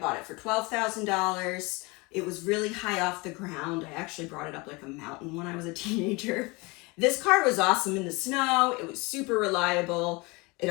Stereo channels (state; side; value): quieter; right; 25.8 dB